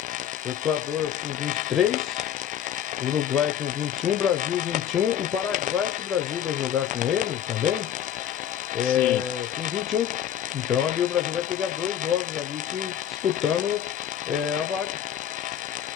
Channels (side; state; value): right; quieter; 10.2 dB